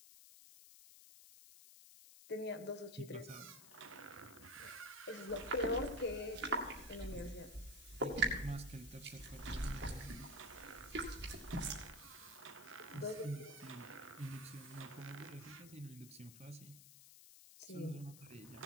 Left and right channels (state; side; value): noise; left; hiss, 16 dB below the sound